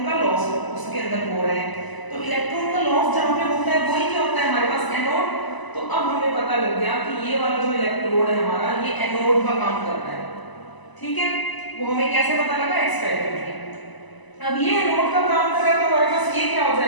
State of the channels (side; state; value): right; late; 1.0 ms